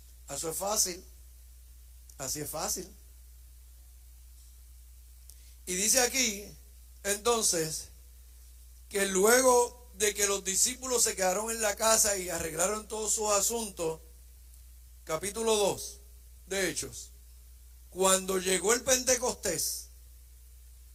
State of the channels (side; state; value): both; identical; correlation 1.00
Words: Eso es fácil. Así es fácil. Y dice aquí, entonces, que luego de que los discípulos se quedaron en la casa y arreglaron todos sus asuntos, capítulo 2 de Hechos, cuando llegó el Pentecostés,